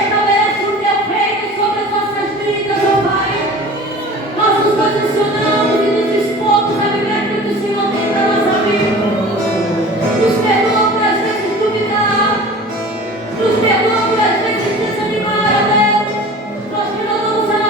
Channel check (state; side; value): normal; both; correlation 0.40